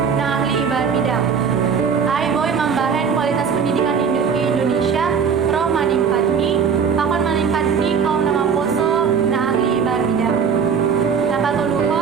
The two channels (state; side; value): quieter; left; 6.5 dB